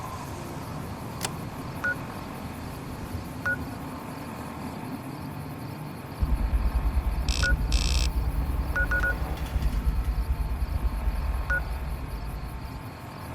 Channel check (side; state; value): both; identical; correlation 1.00